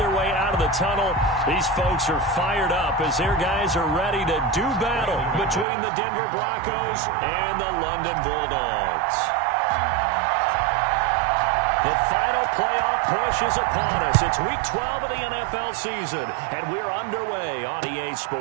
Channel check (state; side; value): drops out; left; at 5.7 s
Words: way out of the tunnel. These folks are fired up as their guys are ready to do battle between the Denver Broncos and the London Bulldogs. The final playoff push is upon us. It's Week 12 of the NFL season, and we're underway on EA